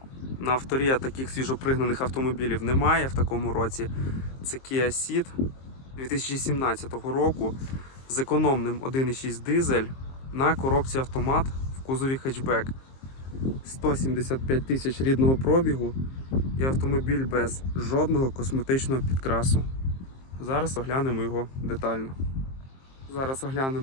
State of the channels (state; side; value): late; right; 23 ms